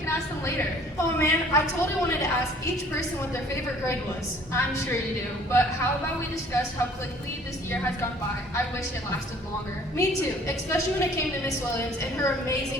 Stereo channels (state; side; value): normal; both; correlation 0.54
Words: ask them later. Oh man, I totally wanted to ask each person what their favorite grade was. I'm sure you do, but how about we discuss how quickly this year has gone by? I wish it lasted longer. Me too, especially when it came to Miss Williams and her